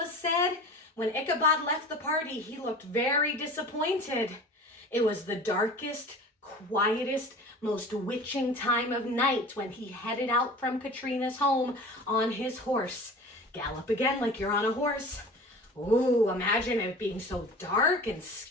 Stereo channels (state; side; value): normal; both; correlation 0.39